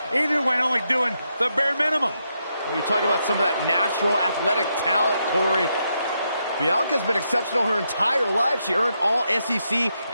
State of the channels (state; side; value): inverted; both; correlation -0.81